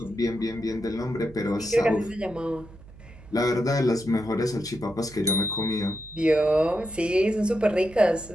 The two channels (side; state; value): right; noise; hum, 20 dB below the sound